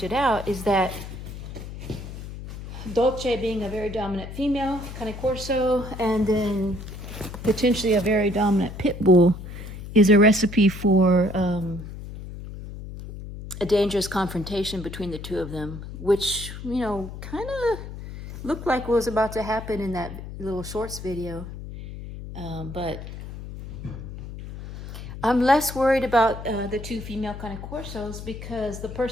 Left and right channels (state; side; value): noise; left; hum, 11 dB below the sound